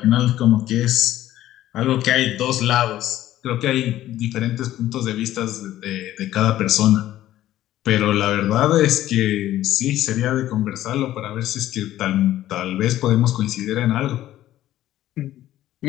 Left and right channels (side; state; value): right; quieter; 13.7 dB